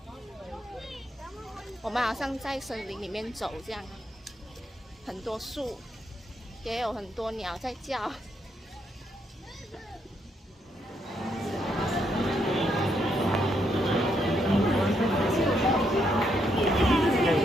我们好像在森林里面走这样，很多树，也有很多鸟在叫。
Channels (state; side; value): normal; both; correlation 0.77